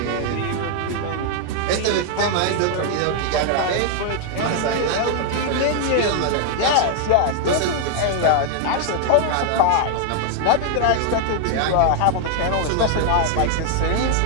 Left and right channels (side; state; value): both; different; correlation 0.00